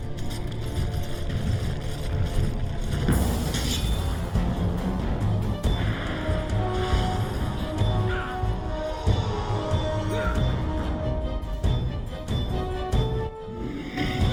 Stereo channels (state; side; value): identical; both; correlation 1.00